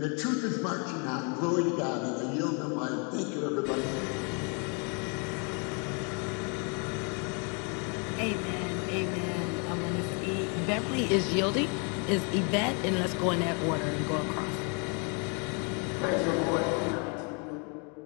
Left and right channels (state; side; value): quieter; right; 36.0 dB